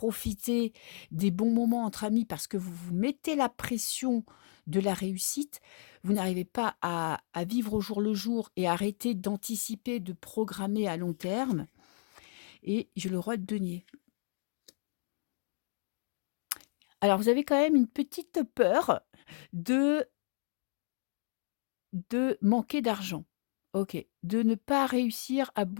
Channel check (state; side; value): silent; right; 56 dB below the other